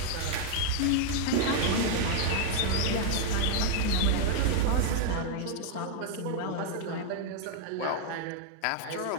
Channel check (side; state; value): both; different; correlation 0.00